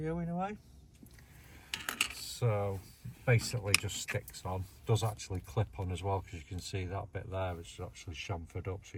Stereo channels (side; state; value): both; identical; correlation 1.00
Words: away. So basically just sticks on, does actually clip on as well, because you can see that bit there is actually chamfered up,